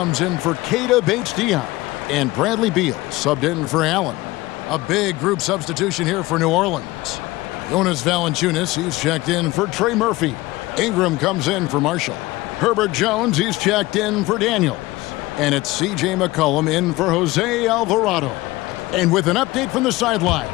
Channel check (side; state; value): right; quieter; 19.7 dB